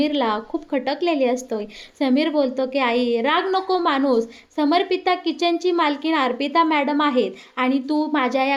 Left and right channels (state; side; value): identical; both; correlation 1.00